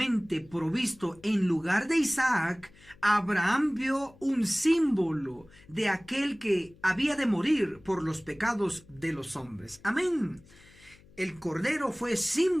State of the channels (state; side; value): noise; left; hum, 26 dB below the sound